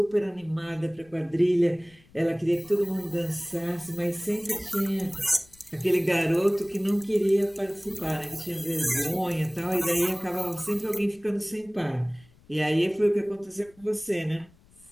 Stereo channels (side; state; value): left; noise; rumble, 28 dB below the sound